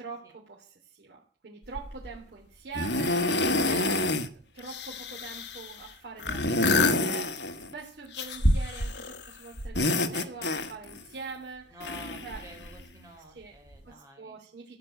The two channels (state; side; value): normal; both; correlation 0.32